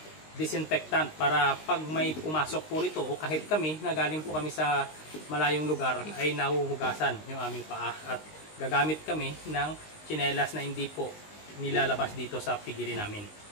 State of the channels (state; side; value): late; right; 19 ms